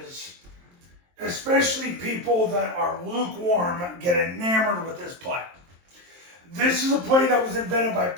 especially people that are lukewarm, get enamored with this play. This is a play that was invented by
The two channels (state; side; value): late; left; 23 ms